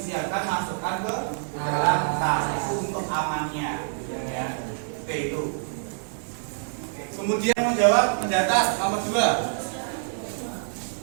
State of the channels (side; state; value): left; silent; digital silence